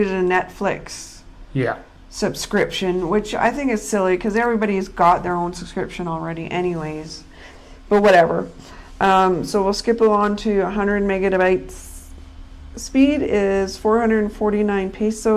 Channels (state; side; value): identical; both; correlation 1.00